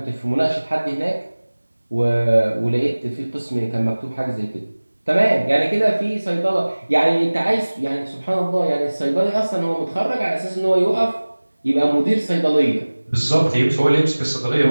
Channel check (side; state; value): both; inverted; correlation -1.00